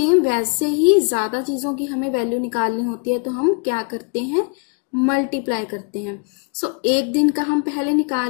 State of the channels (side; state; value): right; quieter; 37.9 dB